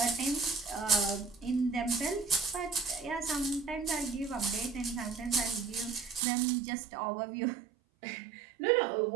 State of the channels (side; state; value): left; drops out; at 6.2 s